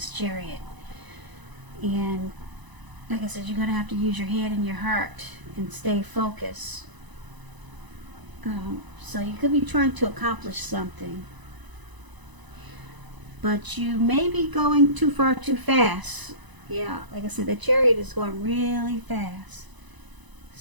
Chariot. And like I said, you're going to have to use your head and your heart and stay focused. So you could be trying to accomplish something, but you may be going too far too fast. Yeah, like I said, the Chariot is going really fast.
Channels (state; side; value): late; left; 1.0 ms